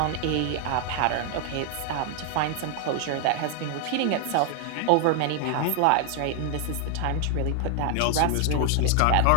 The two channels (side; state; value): both; different; correlation 0.00